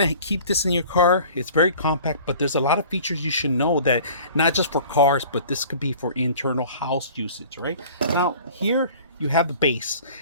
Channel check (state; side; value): inverted; both; correlation -0.46